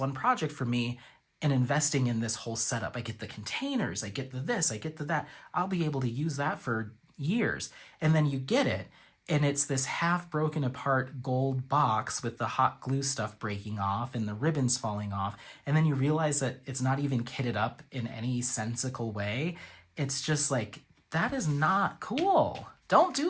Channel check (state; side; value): identical; both; correlation 1.00